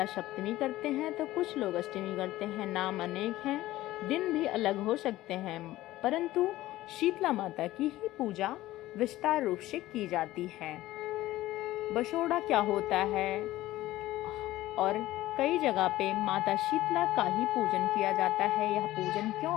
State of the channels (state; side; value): quieter; right; 16.1 dB